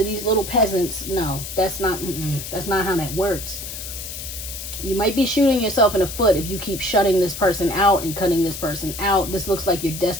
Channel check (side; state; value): left; noise; hiss, 8 dB below the sound